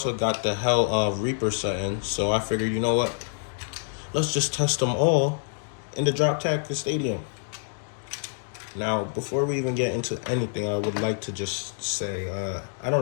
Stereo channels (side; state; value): right; silent; digital silence